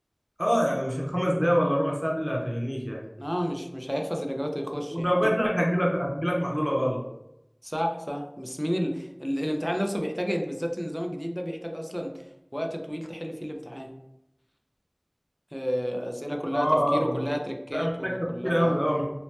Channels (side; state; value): both; identical; correlation 1.00